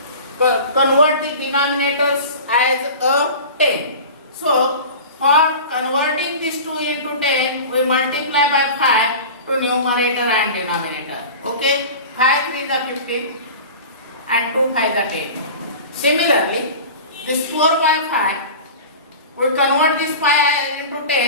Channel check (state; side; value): inverted; both; correlation -0.35